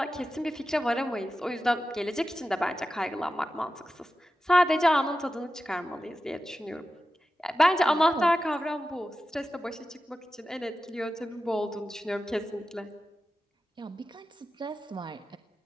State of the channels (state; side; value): normal; both; correlation 0.92